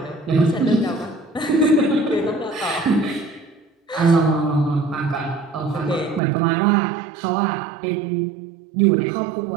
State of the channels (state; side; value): drops out; left; at 6.2 s